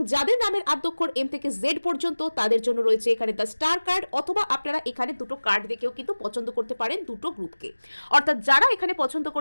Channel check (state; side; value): inverted; both; correlation -1.00